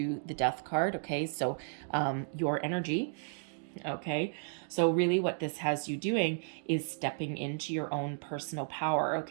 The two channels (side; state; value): left; silent; digital silence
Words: the Death card, okay? So your energy, okay? So really what this has you doing is stepping into your own personal power,